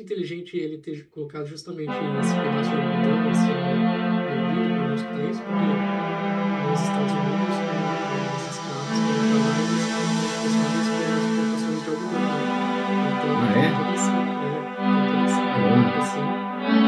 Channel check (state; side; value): identical; both; correlation 1.00